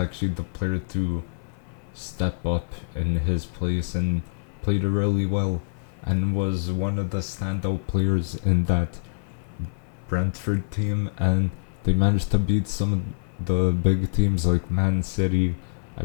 the player to step up in his place and played really well, and was one of the standout players in that Brentford team. And they managed to beat some of the big teams like Man City. I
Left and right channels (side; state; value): right; silent; 55 dB below the other